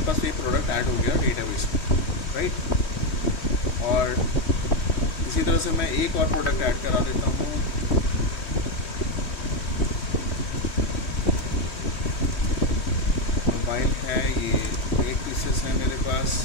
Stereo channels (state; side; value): late; right; 3.2 ms